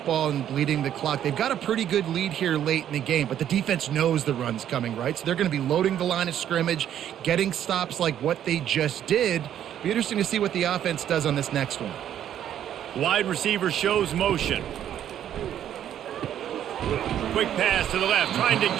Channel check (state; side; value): quieter; left; 10.5 dB